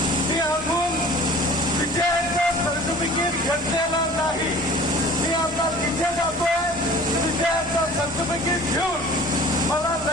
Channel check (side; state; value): both; normal; correlation 0.45